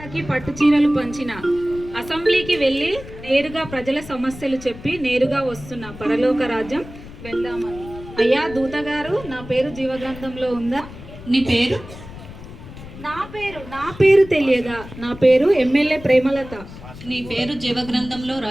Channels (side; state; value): left; noise; rumble, 15 dB below the sound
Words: చీరలు పంచిన అసెంబ్లీకి వెళ్ళి నేరుగా ప్రజల సమస్యలు చెప్పి నేరుగా వస్తున్న పరలోక రాజ్యం వెళ్దామని. అయ్యా దూత గారు, నా పేరు జీవగ్రంథంలో ఉందా? నీ పేరు? నా పేరు తెలియదా? నా పేరు ఎమ్మెల్యే ప్రేమలత. నీ పేరు జీవగ్రంథంలో